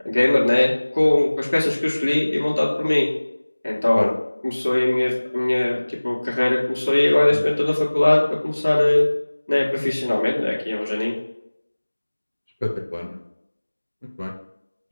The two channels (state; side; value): inverted; both; correlation -1.00